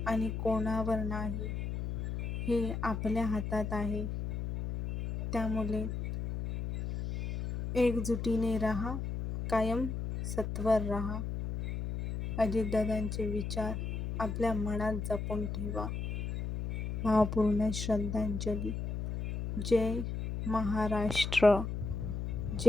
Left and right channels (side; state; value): left; noise; hum, 4 dB below the sound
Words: आणि कोणावर नाही हे आपल्या हातात आहे. त्यामुळे एकजुटीने राहा, कायम सत्वर राहा. अजितदादांचे विचार आपल्या मनात जपून ठेवा. भावपूर्ण श्रद्धांजली. जय महाराष्ट्र.